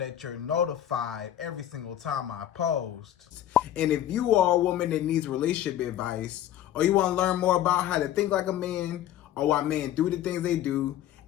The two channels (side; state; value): right; quieter; 11.9 dB